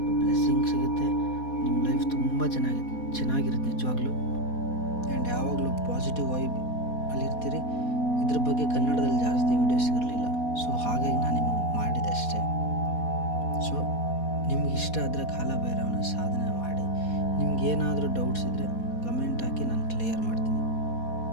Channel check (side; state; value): right; late; 4.2 ms